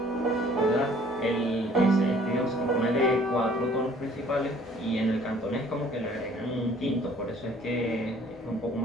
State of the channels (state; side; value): normal; both; correlation 0.56